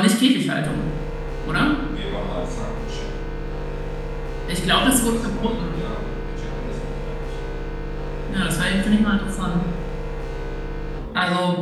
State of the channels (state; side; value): identical; both; correlation 1.00